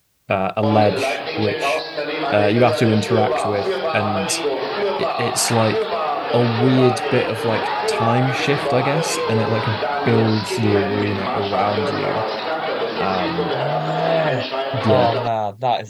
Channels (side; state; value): both; identical; correlation 1.00